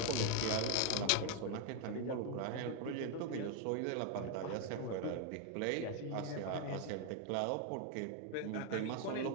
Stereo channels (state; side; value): different; both; correlation 0.00